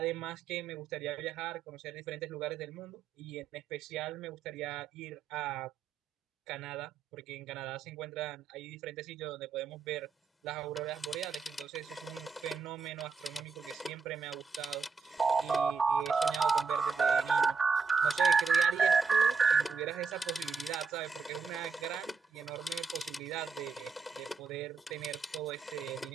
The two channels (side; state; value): left; quieter; 5.1 dB